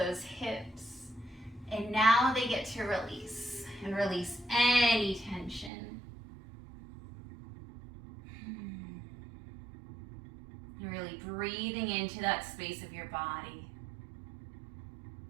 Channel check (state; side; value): drops out; left; at 5.7 s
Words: hips, and now they get to release, and release any tension. You're really breathing into that space of your body.